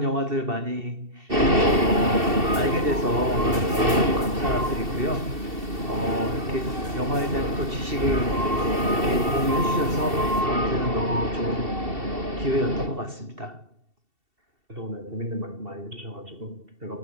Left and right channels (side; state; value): left; late; 2.7 ms